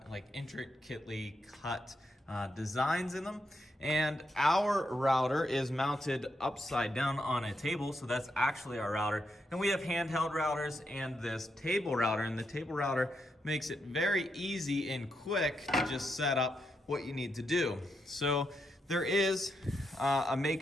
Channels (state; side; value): normal; both; correlation 0.82